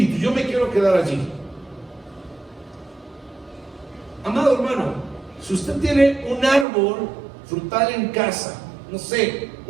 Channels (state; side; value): drops out; left; at 6.7 s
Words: Yo me quiero quedar allí. Amado hermano, si usted tiene un árbol frutal en casa, no sé,